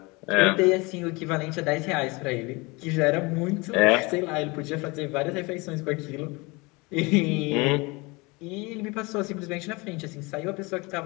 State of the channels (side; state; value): right; quieter; 25.8 dB